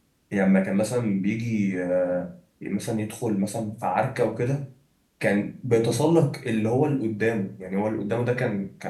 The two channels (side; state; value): both; identical; correlation 1.00